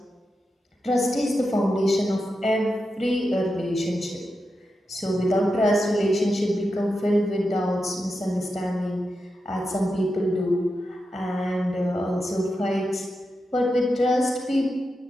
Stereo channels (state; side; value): normal; both; correlation 0.88